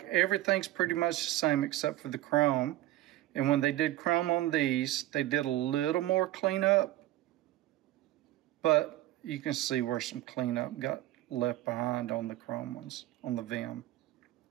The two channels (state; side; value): quieter; left; 15.2 dB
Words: everything's pretty much the same except for the chrome. And when they did chrome on these, they did a little more cleanup, but you can see where some cleanup got left behind on the chrome ones, on the Vim.